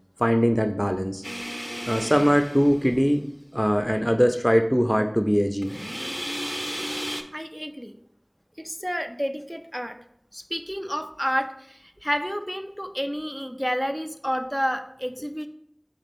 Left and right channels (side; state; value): both; identical; correlation 1.00